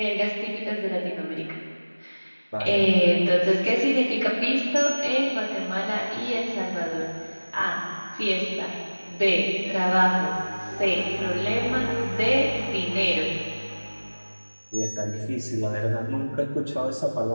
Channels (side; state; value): both; inverted; correlation -1.00